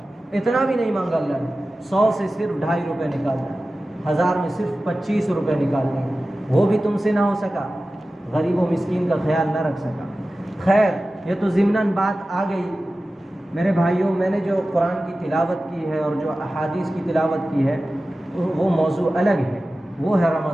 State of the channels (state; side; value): normal; both; correlation 0.95